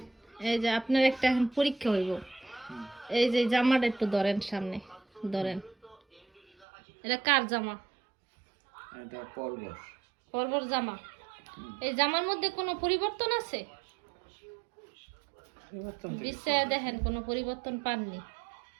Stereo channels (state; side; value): drops out; left; at 6.7 s